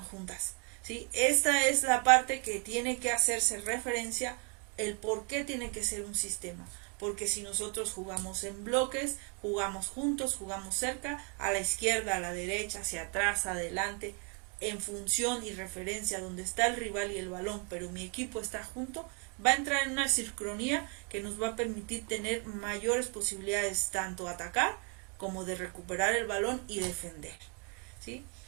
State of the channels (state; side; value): quieter; left; 34.1 dB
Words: juntas, ¿sí? Esta es la parte que tiene que hacerse referencia, el por qué tiene que ser un sistema. Porque si nosotros jugamos en bloques, jugamos juntos, jugamos cerca, a la izquierda, a la derecha, hacia atrás, adelante, en función y referencia donde está el rival y el balón, pero mi equipo está junto, va a entrar en una sincronía que nos va a permitir tener mayores posibilidades tanto atacar como de recuperar el balón y defender, ¿sí?